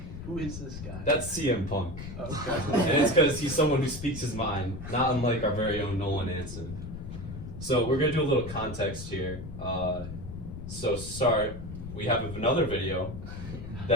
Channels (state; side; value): noise; left; rumble, 9 dB below the sound